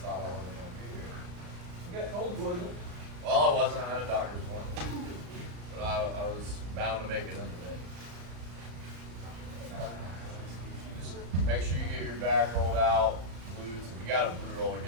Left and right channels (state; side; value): late; left; 34 ms